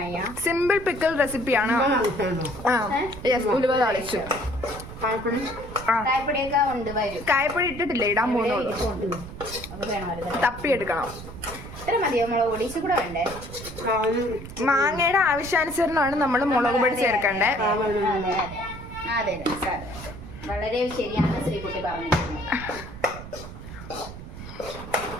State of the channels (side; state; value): right; noise; rumble, 12 dB below the sound